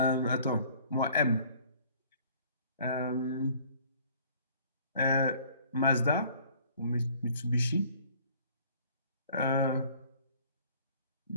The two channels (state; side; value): inverted; both; correlation -0.54